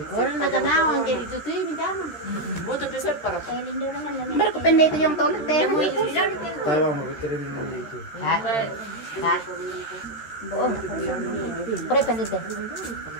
Orang na kanawang kaya dito to yung tama. butuh pisau para Pero ko pende ito yung toilet eh. Tayo mau kirim dulu itu. Oh. Pre pende ito.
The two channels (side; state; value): right; late; 13 ms